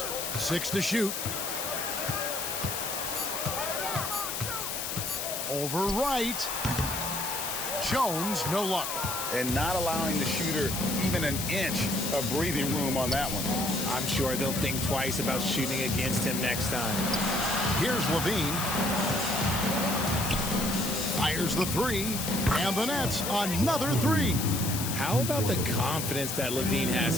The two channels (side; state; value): left; noise; hiss, 3 dB below the sound